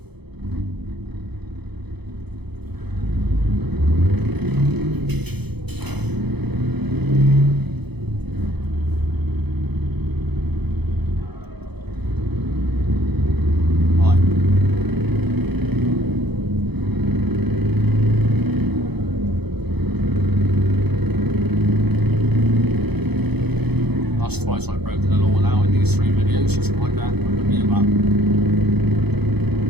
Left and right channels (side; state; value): left; late; 0.98 ms